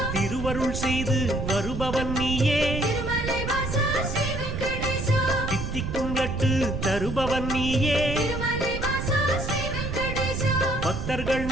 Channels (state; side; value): noise; right; rumble, 4 dB below the sound